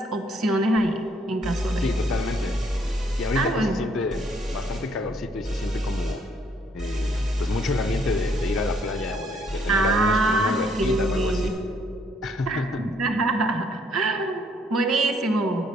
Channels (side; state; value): both; normal; correlation 0.67